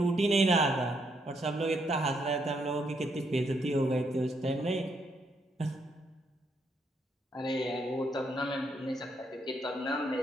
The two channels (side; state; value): both; normal; correlation 0.76